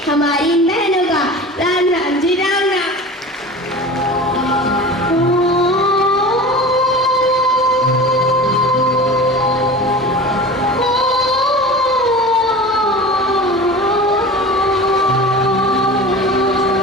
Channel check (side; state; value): both; normal; correlation 0.35